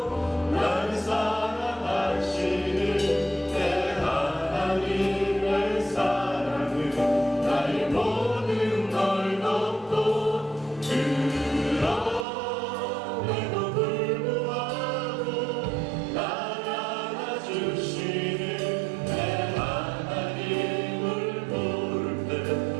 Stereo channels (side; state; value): left; drops out; at 12.2 s